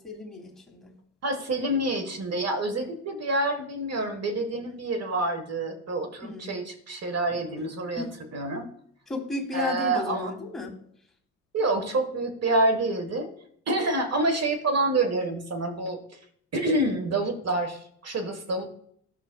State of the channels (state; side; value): normal; both; correlation -0.09